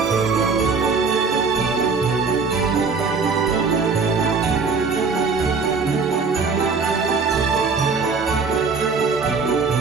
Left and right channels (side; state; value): left; quieter; 4.8 dB